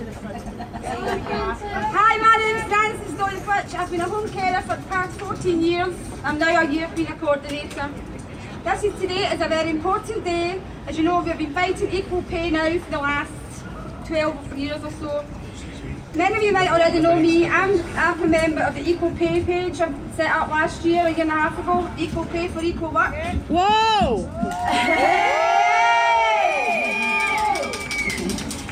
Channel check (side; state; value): both; identical; correlation 1.00